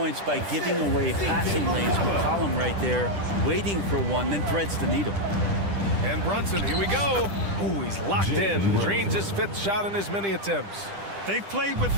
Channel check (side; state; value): left; late; 10 ms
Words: by giving away passing lanes. McCollum right there, waiting for one, then threads the needle. And Brunson, here we go. Ooh, he's locked in. Drains his 5th shot in as many attempts. They've played with